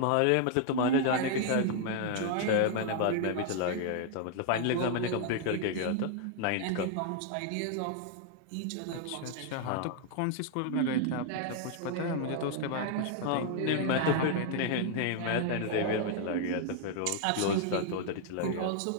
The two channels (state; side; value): different; both; correlation 0.00